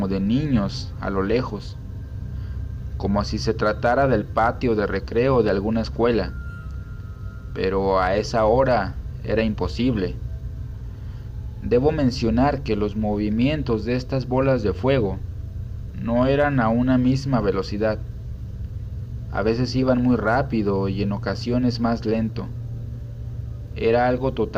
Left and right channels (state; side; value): identical; both; correlation 1.00